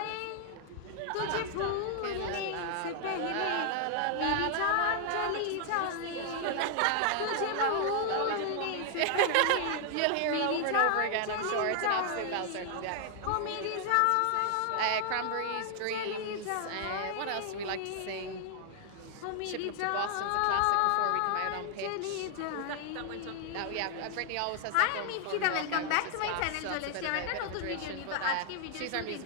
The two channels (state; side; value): different; both; correlation 0.00